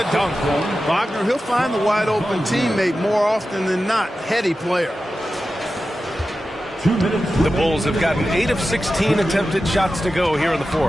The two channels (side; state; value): both; normal; correlation 0.93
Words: dunk. Wagner, he'll find the wide-open teammate more often than not. Heady player. The Bulls have gotten 8 of 16 attempted shots to go here in the